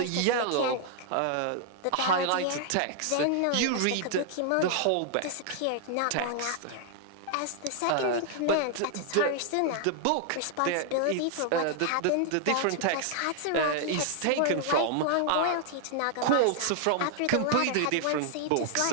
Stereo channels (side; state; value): both; different; correlation 0.00